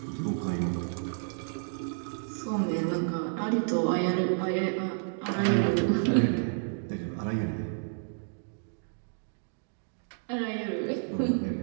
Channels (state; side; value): silent; left; digital silence